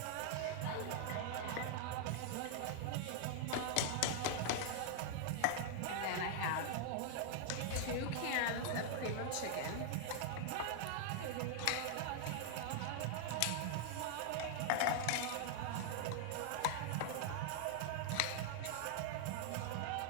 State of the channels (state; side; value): different; both; correlation 0.00